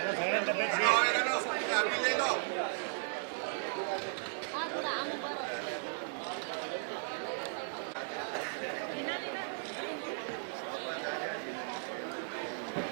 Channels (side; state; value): left; silent; digital silence